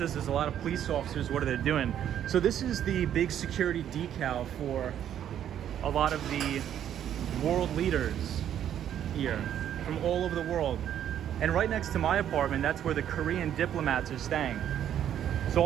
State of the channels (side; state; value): left; quieter; 10.2 dB